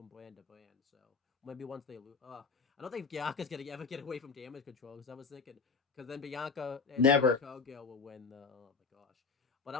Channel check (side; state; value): right; quieter; 4.9 dB